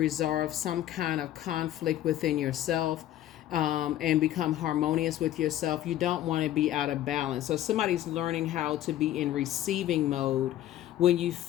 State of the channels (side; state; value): right; quieter; 12.8 dB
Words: some kind of conflict within yourself, and become harmonious with yourself. You don't want to be out of balance. So somebody's learning how to be in receiving mode when you